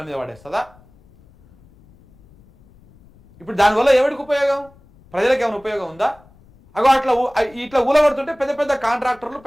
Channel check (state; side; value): noise; left; rumble, 28 dB below the sound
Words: మీద పడేస్తుందా? ఇప్పుడు దానివల్ల ఎవరికి ఉపయోగం? ప్రజలకు ఏమైనా ఉపయోగం ఉందా? అగో ఇట్లా ఊలగొడుతుంటే పెద్ద పెద్ద కాంట్రాక్టర్లు,